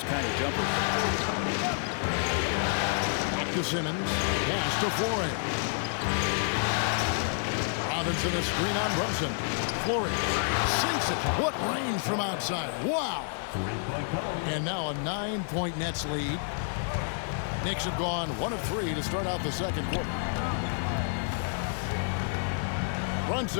kind of jumpers. Back to Simmons. Pass to Flores. Robinson a screen on Brunson. Flores sinks it. What range from outside. Wow. And now a 9-point Nets lead. Knicks have gone 1 of 3 to start out the second quarter.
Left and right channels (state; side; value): silent; right; 58 dB below the other